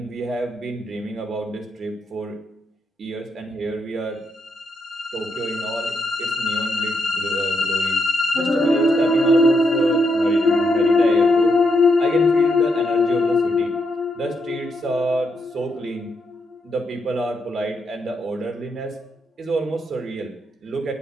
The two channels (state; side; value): normal; both; correlation 0.80